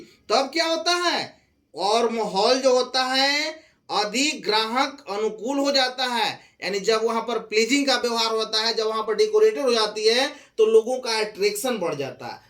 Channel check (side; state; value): both; identical; correlation 1.00